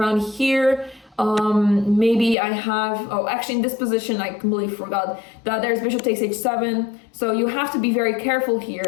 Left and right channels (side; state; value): right; drops out; at 2.4 s